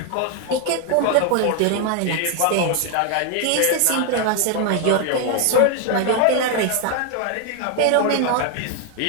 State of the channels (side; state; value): both; different; correlation 0.00